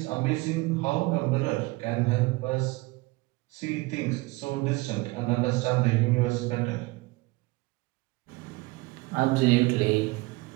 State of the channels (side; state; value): left; quieter; 22.8 dB